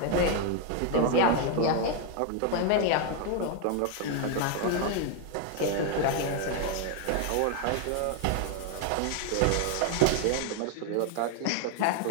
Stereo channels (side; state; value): both; different; correlation 0.01